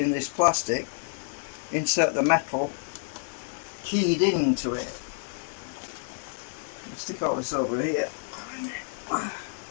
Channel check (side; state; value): right; silent; digital silence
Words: this plastic, insert the metal keyed into it. Stick all this over here.